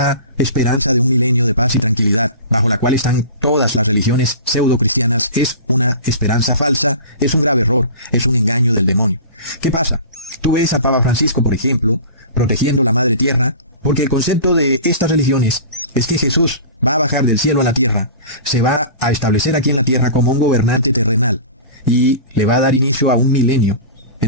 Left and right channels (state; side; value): inverted; both; correlation -0.37